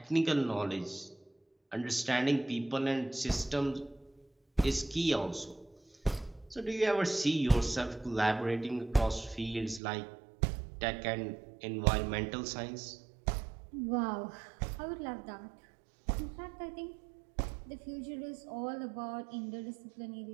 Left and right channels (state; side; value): drops out; left; at 9.8 s